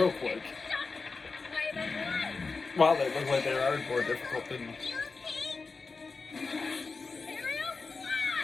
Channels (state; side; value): quieter; right; 4.3 dB